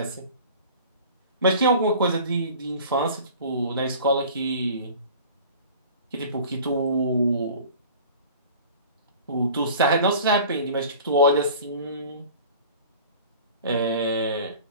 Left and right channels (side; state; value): both; inverted; correlation -0.43